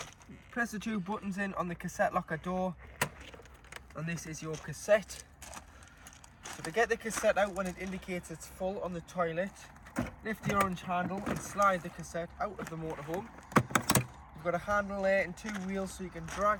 Press the 2 buttons in on the cassette locker door, and this is your cassette. So to get the cassette out when it indicates it's full on the toilet, lift the orange handle and slide the cassette out of the motorhome. You've got a handle there and 2 wheels, so you can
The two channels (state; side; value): identical; both; correlation 1.00